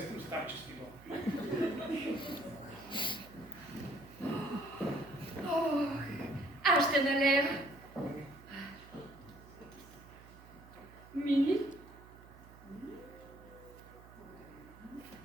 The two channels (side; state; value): right; noise; hum, 20 dB below the sound